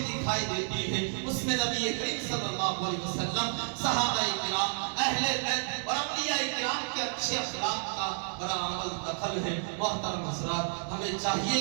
دکھائی دیتی ہے، اس میں نبی کریم صلی اللہ علیہ وسلم، صحابہ کرام، اہل بیت اور اولیاء کرام کے اچھے اخلاق کا بڑا عمل دخل ہے۔ محترم حضرات، ہمیں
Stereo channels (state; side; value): silent; left; digital silence